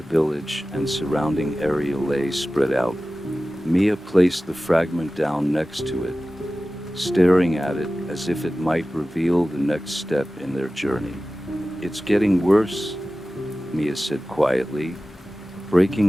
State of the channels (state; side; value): normal; both; correlation 0.96